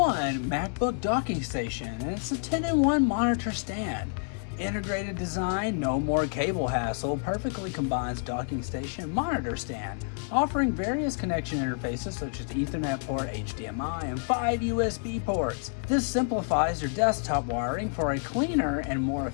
MacBook docking station, and it's a 10-in-1 monitor stand. Integrated design, no more cable hassle, perfectly combines docking station and monitor stand, offering various connection interfaces such as Ethernet port, HDMI, and 5 USB ports. This simplifies your desktop wiring for a cleaner and more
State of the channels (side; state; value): right; silent; 59 dB below the other